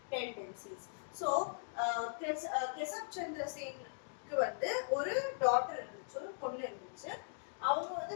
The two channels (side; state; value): right; silent; digital silence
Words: tendencies. So Kesab Chandra Sen க்கு வந்து ஒரு daughter இருந்துச்சு, ஒரு பொண்ணு இருந்துச்சு. அவங்க வந்து